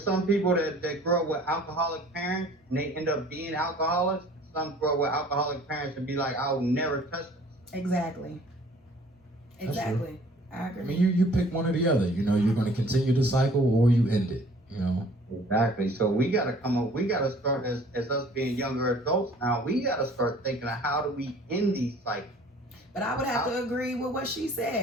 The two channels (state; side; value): normal; both; correlation 0.53